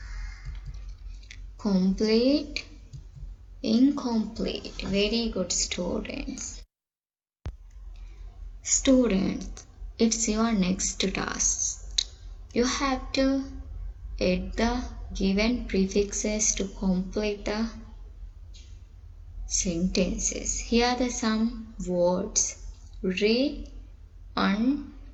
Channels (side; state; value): both; identical; correlation 1.00